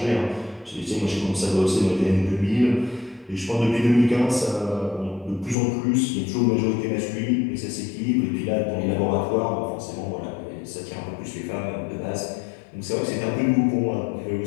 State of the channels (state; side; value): drops out; right; at 5.6 s